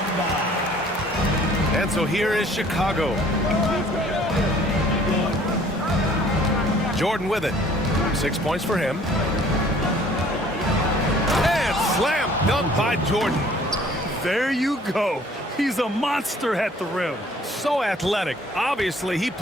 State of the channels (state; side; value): normal; both; correlation 0.55